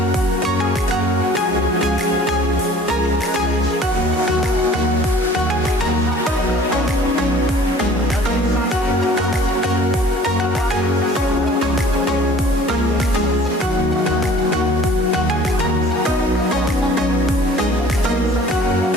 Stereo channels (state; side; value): normal; both; correlation 0.50